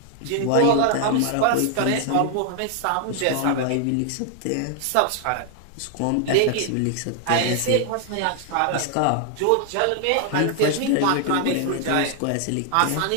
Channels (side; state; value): both; different; correlation 0.00